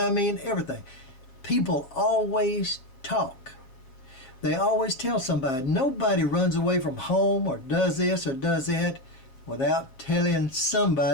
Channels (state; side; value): late; right; 7.5 ms